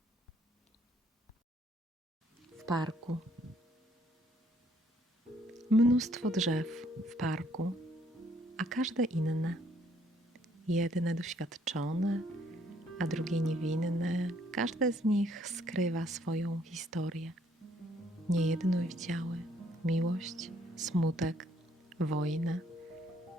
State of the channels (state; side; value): normal; both; correlation 0.66